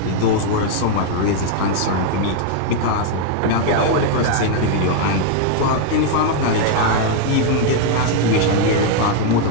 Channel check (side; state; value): both; different; correlation 0.00